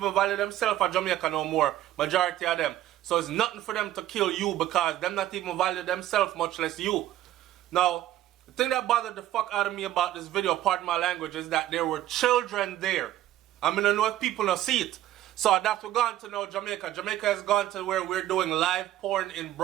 value themselves at Jamaica no more. Majority of them. So it's nothing for them to kill you because them not even value themselves, much less you. Now, the thing that bothered the fuck out of me about this video, pardon my language, is that there were children there. I mean, I know if people don't see it. So that's what we're going to know Jamaica. Jamaica has gone to where we're doing live porn in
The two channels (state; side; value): quieter; left; 13.5 dB